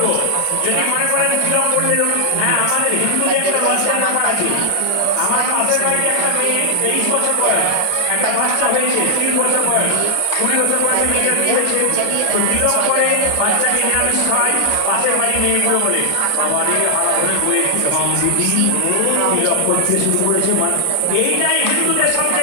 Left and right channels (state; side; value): different; both; correlation 0.00